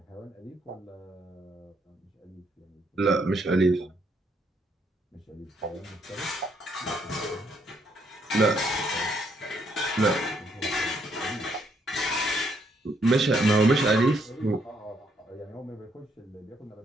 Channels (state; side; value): normal; both; correlation 0.72